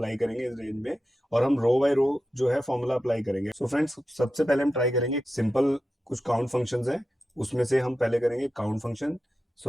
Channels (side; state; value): both; normal; correlation 0.91